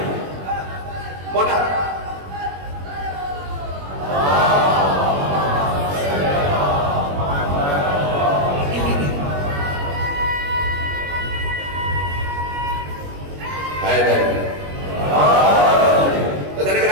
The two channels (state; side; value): late; left; 21 ms